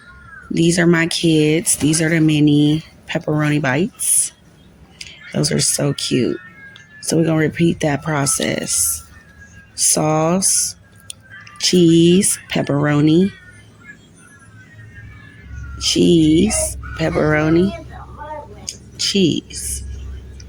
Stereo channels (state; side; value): identical; both; correlation 1.00